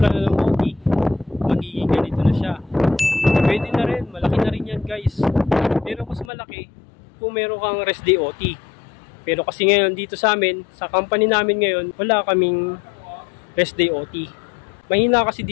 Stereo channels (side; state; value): right; drops out; at 6.3 s